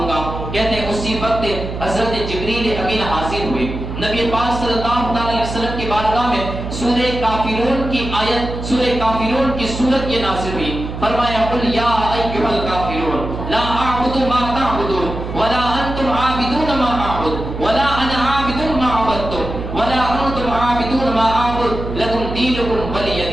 گا۔ کہتے ہیں اسی وقت حضرت جبریل امین حاضر ہوئے، نبی پاک صلی اللہ علیہ وسلم کی بارگاہ میں سورہ کافرون کی آیت، سورہ کافرون کی سورت یہ نازل ہوئی۔ فرمایا قل یا ایھا الکافرون لا اعبد ما تعبدون ولا انتم عابدون ما اعبد ولا انا عابد ما عبدتم ولا انتم عابدون ما اعبد لکم دینکم ولی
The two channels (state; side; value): noise; right; hum, 7 dB below the sound